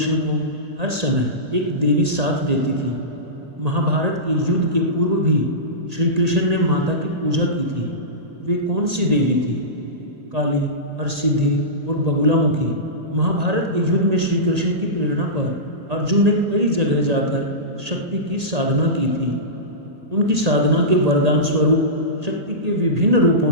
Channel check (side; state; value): left; late; 1.8 ms